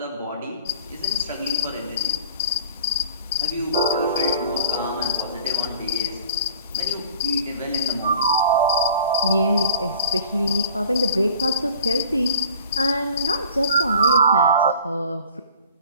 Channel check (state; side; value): inverted; both; correlation -0.46